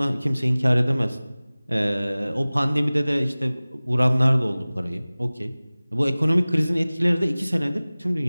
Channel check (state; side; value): inverted; both; correlation -0.99